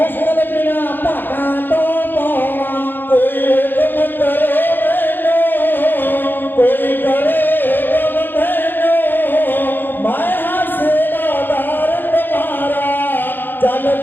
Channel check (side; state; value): right; late; 0.093 ms